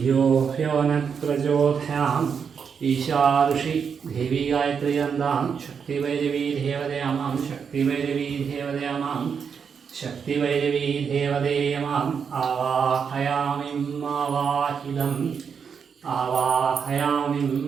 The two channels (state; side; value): quieter; left; 6.6 dB